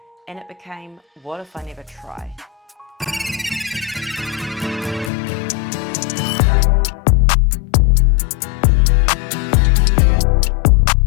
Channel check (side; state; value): right; drops out; at 5.1 s